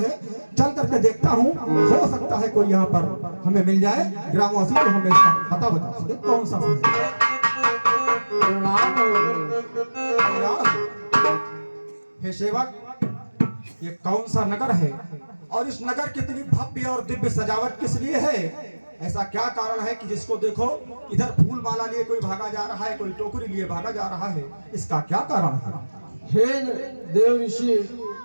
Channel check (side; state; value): both; inverted; correlation -1.00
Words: है चल करके देखता हूँ, हो सकता है कोई यहाँ पर हमें मिल जाए ग्रामवासी तो हमें इसका पता बता सके कौन सा है। प्रणाम हो। हे सेवक, ये कौन सा नगर है और इस नगर कितनी भव्य और दिव्य सजावट किस लिए है? ऐसा क्या कारण है कि जिसको देखो इधर फूल माला लिए कोई भागा जा रहा है, कोई टोकरी लिए भागा जा रहा है, इसका क्या कारण है? हे देव ऋषि,